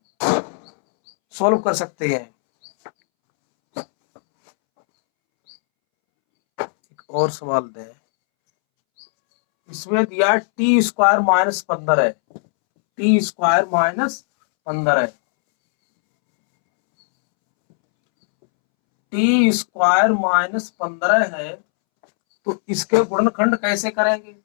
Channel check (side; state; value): right; silent; 67 dB below the other